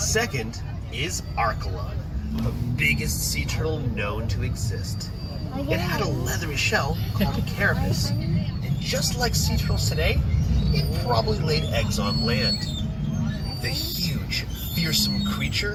is Archelon, the biggest sea turtle known to exist. It had a leathery shell called a carapace, and just like sea turtles today, it probably laid eggs on land. The huge, fearsome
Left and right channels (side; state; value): both; identical; correlation 1.00